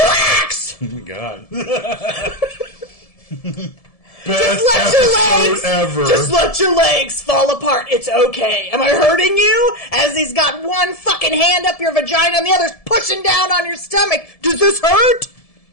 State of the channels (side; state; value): right; late; 1.7 ms